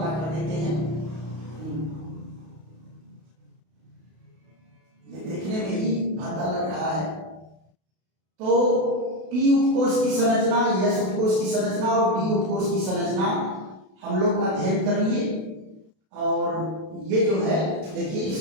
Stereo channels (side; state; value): left; late; 32 ms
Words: कर देते हैं। ये देखने में ही भद्दा लग रहा है। तो पी उपकोष की संरचना, एस उपकोष की संरचना और डी उपकोष की संरचना हम लोग अध्ययन कर लिए। और ये जो है देखिए,